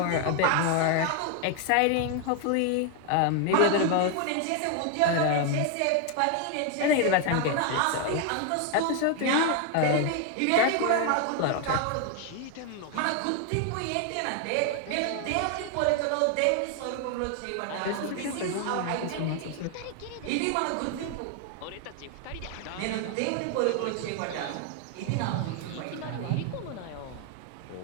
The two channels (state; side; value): different; both; correlation 0.01